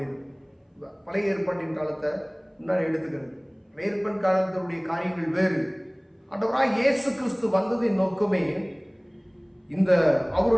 பழைய ஏற்பாட்டின் காலத்தை முன்னாடி எடுத்துக்கிறது. பழைய ஏற்பாட்டின் காலத்தினுடைய காரியங்கள் வேறு. ஆண்டவராய் இயேசு கிறிஸ்து வந்ததின் நோக்கமே, இந்த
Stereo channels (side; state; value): both; identical; correlation 1.00